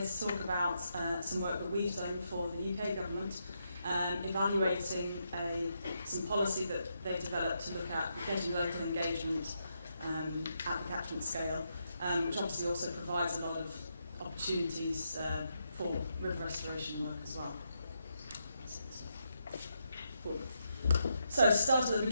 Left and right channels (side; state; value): both; inverted; correlation -0.81